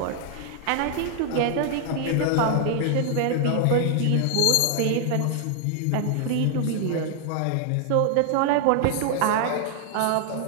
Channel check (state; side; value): different; both; correlation 0.00